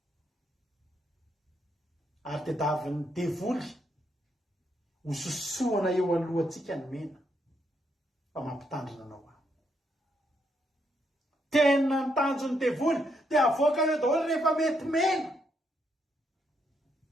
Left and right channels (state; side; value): normal; both; correlation 0.77